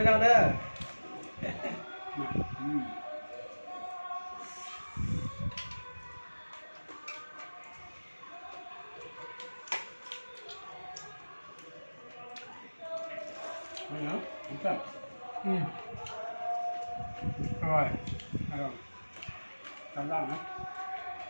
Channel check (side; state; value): both; inverted; correlation -1.00